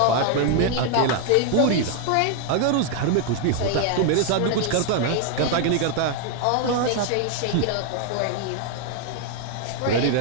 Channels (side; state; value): both; different; correlation 0.00